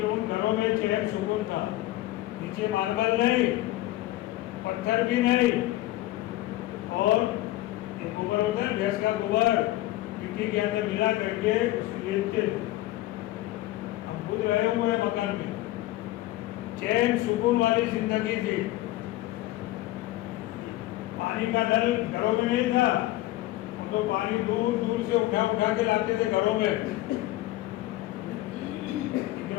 ان گھروں میں چین سکون تھا. نیچے ماربل نہیں، پتھر بھی نہیں، اور ایک گوبر ہوتا ہے بھینس کا گوبر، مٹی کے اندر ملا کر کے اس کو لیپتے. ہم خود رہے ہوئے مکان میں. چین سکون والی زندگی تھی. پانی کا نل گھروں میں نہیں تھا، ہم تو پانی دور دور سے اٹھا اٹھا کے لاتے تھے گھروں میں.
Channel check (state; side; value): quieter; right; 16.6 dB